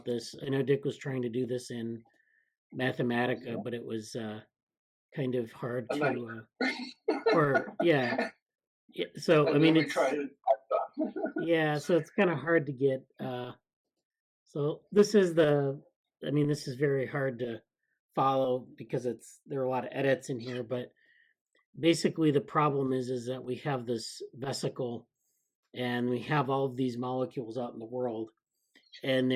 this. I know Dick was trying to do this in Mathematica, but it was kind of hard to so I mean, it's yeah, so it's kind of hard to get. So this is this is very hard to follow because there are a lot of edits in here. But basically, the problem is that we have this vesicle, and we have all of these molecules out in the world, and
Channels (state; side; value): identical; both; correlation 1.00